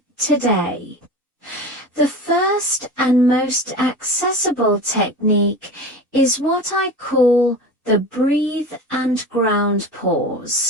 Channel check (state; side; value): normal; both; correlation 0.32